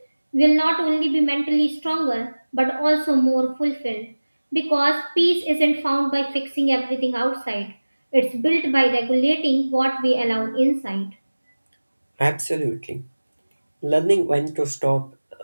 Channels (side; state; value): both; inverted; correlation -1.00